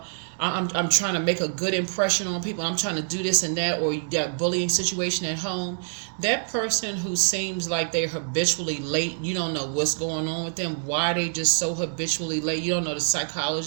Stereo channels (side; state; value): left; silent; digital silence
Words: I'm trying to make a good impression on people. I'm trying to do this and that, or you got bullying situation at home. That person who seems like they're habitually late, you don't know what's going on with them, why they just so habitually late. You don't know the